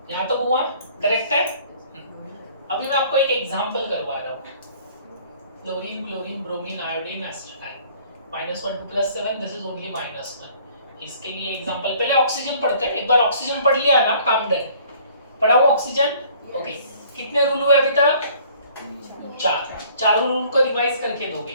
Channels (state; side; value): inverted; both; correlation -0.56